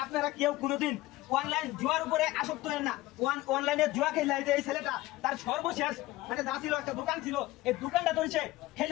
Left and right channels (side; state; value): right; quieter; 18.2 dB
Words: আপনারা কেউ কোনোদিন অনলাইন জুয়ার উপরে আসক্ত হেন না। অনলাইনে জুয়া খেলা এই ছেলেটা তার সর্বশেষ মানে যা ছিল একটা দোকান ছিল, এই দোকানটা ধরেছে